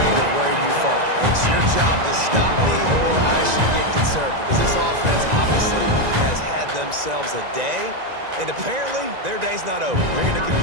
of where you fall. It's your job to stop me, or I should get conserved, because this offense obviously has had themselves a day, and apparently their day's not over. They're going to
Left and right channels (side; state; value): left; late; 1.9 ms